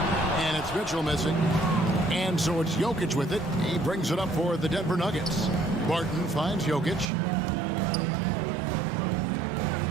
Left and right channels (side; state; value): left; drops out; at 7.1 s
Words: And it's Mitchell missing. And so it's Jokic with it. He brings it up for the Denver Nuggets. Barton finds Jokic.